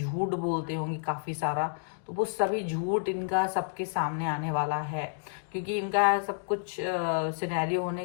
बोलते होंगे काफी सारा, तो वो सभी झूठ इनका सबके सामने आने वाला है। क्योंकि इनका सब कुछ सिनेरियो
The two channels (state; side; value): silent; right; digital silence